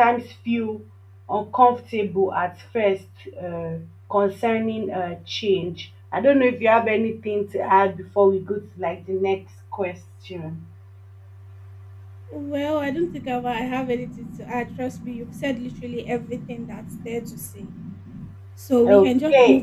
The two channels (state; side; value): identical; both; correlation 1.00